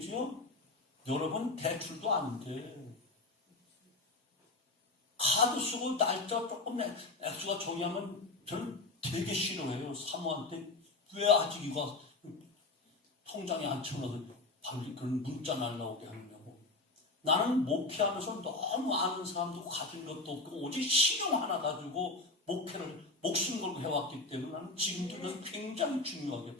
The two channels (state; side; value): quieter; right; 3.2 dB